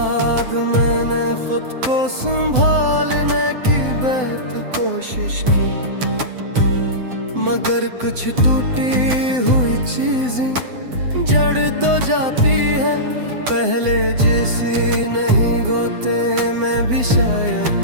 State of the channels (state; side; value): late; left; 7.9 ms